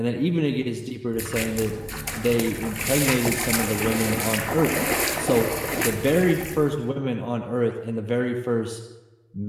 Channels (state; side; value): identical; both; correlation 1.00